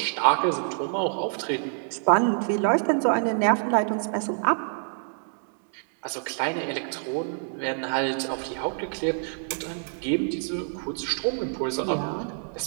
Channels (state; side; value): silent; left; digital silence